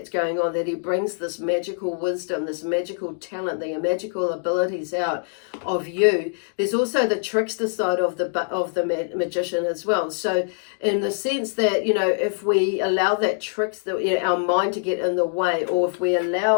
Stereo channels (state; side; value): silent; right; digital silence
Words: going on, that he brings this magical wisdom, this magical talent, the magical abilities out of you, there's also the trickster side of the magician as well. So in the sense that, if we allow that our mind to get in the way, or if we